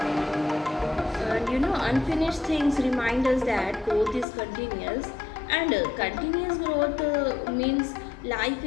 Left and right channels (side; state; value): right; drops out; at 4.2 s